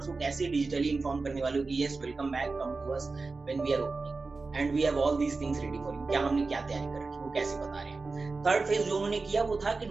को कैसे डिजिटली इन्फॉर्म करने वाले हो कि yes welcome back, come to us when we are opening and we have all these things ready for you, क्या हमने क्या तैयारी कर रखी है वो कैसे बता रहे हैं। थर्ड फेज जो उन्होंने किया वो था कि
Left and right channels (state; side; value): quieter; left; 3.9 dB